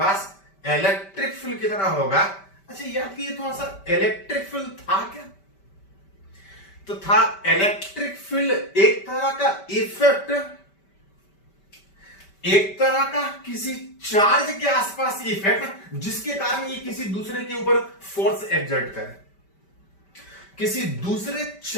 इलेक्ट्रिक फील्ड कितना होगा। अच्छा याद कीजिए थोड़ा सा, इलेक्ट्रिक फील्ड था क्या? तो था इलेक्ट्रिक फील्ड एक तरह का इफेक्ट, एक तरह का किसी चार्ज के आसपास इफेक्ट जिसके कारण ये किसी दूसरे के ऊपर फोर्स एक्सर्ट करे, किसी दूसरे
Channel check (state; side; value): late; right; 5.1 ms